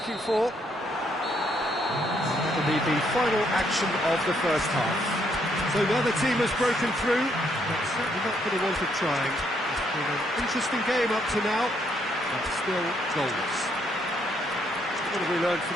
for. That'll be the final action of the first half. So now the team has broken through, but certainly not for the want of trying. It's been an interesting game up to now, but still goals. What have we learned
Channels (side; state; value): both; normal; correlation 0.72